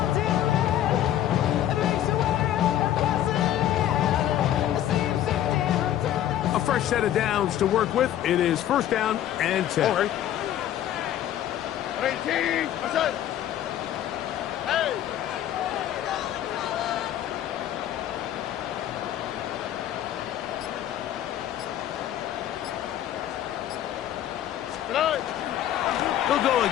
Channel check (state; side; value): quieter; right; 11.7 dB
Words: A fresh set of downs to work with. It is first down and 10. All right. 18. What's that? Hey. They'll go